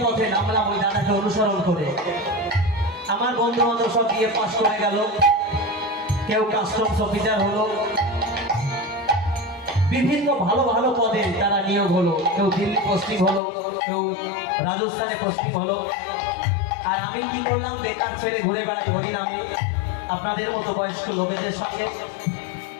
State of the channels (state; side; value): drops out; right; at 13.4 s